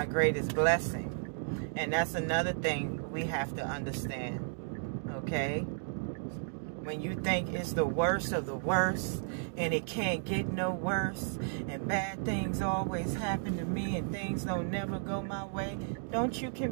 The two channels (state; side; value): silent; left; digital silence